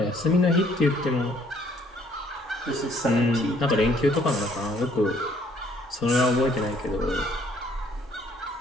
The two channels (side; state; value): both; normal; correlation 0.63